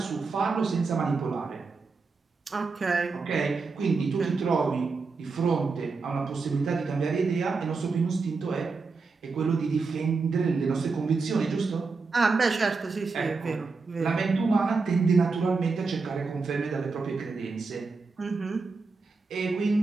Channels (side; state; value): left; quieter; 4.4 dB